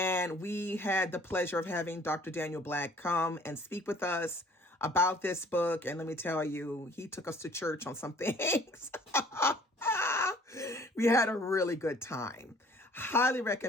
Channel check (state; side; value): normal; both; correlation 0.54